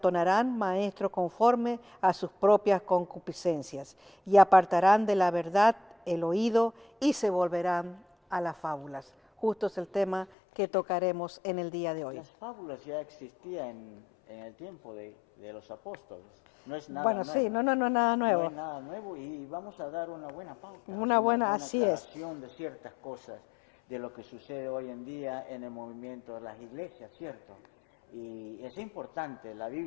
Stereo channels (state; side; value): drops out; right; at 10.3 s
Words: maestros conforme a sus propias concupiscencias, y apartarán de la verdad el oído y se volverán a las fábulas. Justo es el tema que tocaremos en el día de hoy. Las fábulas ya existían en el tiempo de los apóstoles. No es nada bueno, nuevo. Sí, no, nada nuevo. No es nada nuevo y vamos a dar una buena pauta. Una buena, así es. De ciertas cosas de lo que sucede hoy en día en el movimiento de las iglesias, ¿cierto? Y es importante, la